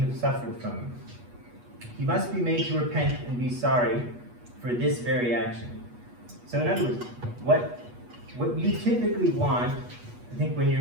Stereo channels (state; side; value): late; left; 8.3 ms